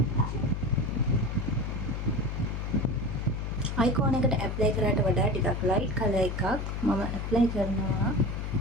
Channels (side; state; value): left; noise; hum, 4 dB below the sound